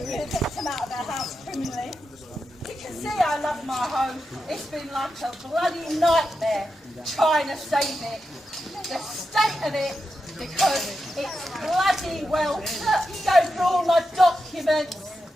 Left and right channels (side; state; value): both; normal; correlation 0.88